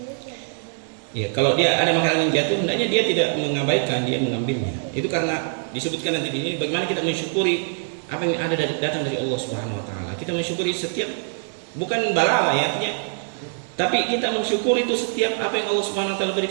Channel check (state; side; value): silent; left; digital silence